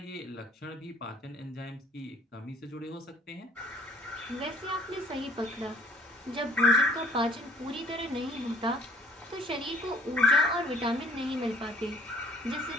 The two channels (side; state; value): both; normal; correlation 0.55